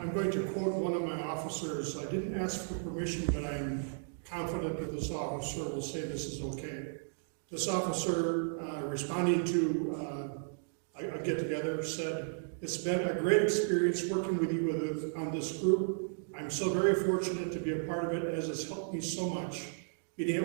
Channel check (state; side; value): silent; left; digital silence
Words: going to quote one of my officers. I didn't ask for permission, but I'm confident that this officer will say this is okay. This officer, responding to a get-together, said, "It's been a great experience working with you on this group. I'm so very fortunate to be a part of it, as it's helped me so much. Being